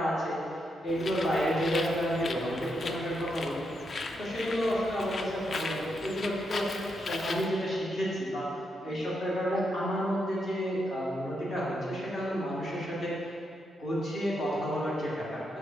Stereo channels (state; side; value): normal; both; correlation 0.82